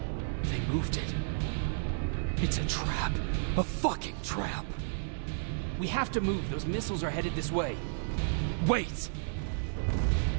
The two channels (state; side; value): silent; left; digital silence